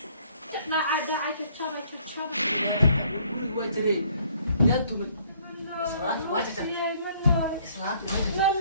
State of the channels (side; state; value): both; inverted; correlation -0.62